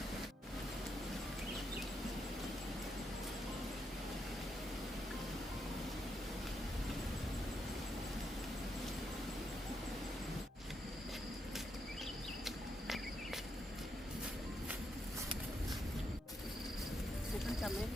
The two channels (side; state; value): both; normal; correlation 0.80